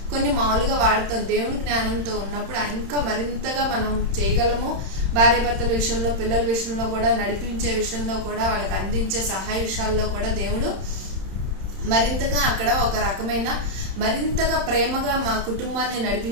కొన్ని మామూలుగా వాడతాం. దేవుడి జ్ఞానంతో ఉన్నప్పుడు ఇంకా మరింతగా మనం చేయగలము. భార్య భర్తల విషయంలో, పిల్లల విషయంలో కూడా, నడిపించే విషయంలో కూడా, వాళ్ళకి అందించే సహాయ విషయాల్లో కూడా దేవుడు మరింతగా అక్కడ ఒక రకమైన మరింతగా ప్రేమగా మా కుటుంబాన్ని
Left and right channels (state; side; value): late; left; 31 ms